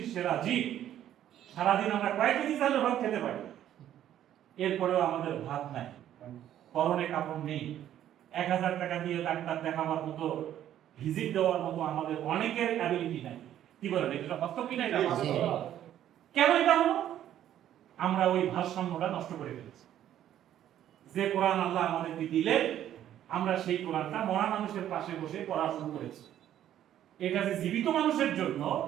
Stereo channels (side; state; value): left; quieter; 11.4 dB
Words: সেরা জীব, সারাদিন আমরা কয়েক কেজি চালের ভাত খেতে পারি, এরপরেও আমাদের ভাত নাই, পরনে কাপড় নেই, 1000 টাকা দিয়ে ডাক্তার দেখাবার মতো, ভিজিট দেওয়ার মতো আমাদের অনেকের অ্যাবিলিটি নাই। কি বলেন, এটা বাস্তব কি না? এটা বাস্তব। কেন এটা হলো? আমরা ওই ভারসাম্যটা নষ্ট করে ফেলেছি। যে কোরআন আল্লাহ আমাদেরকে দিলেন, আমরা সেই কোরআনটা মরা মানুষের পাশে বসে পড়া শুরু করেছি। এটা যে জীবিত মানুষের জন্য,